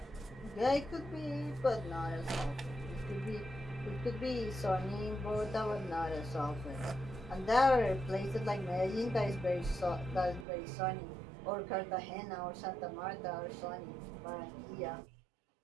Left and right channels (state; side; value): drops out; left; at 10.5 s